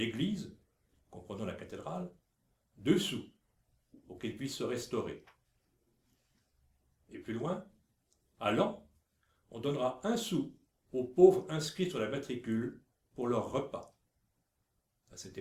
comprenant la cathédrale, 2 sous, pour qu'ils puissent se restaurer. Et plus loin, à Laon, on donnera 1 sou aux pauvres inscrits sur la matricule pour leur repas. À cette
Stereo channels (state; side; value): identical; both; correlation 1.00